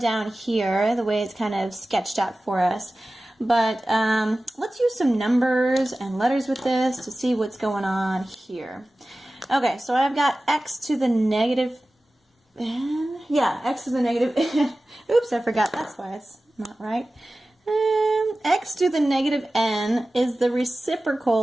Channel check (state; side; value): normal; both; correlation 0.96